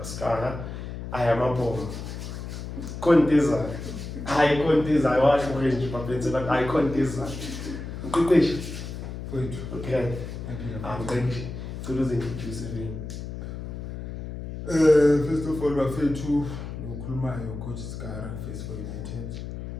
ayamabhomo. Konteza. Hayi konteza washo nje bafethu but hayi konteza. Umqeqeshi Wait. okay. Thank you. So those introduce me. First of all, bafethu ukukhulumayo coach Skara, Face for United,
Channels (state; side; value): noise; left; hum, 8 dB below the sound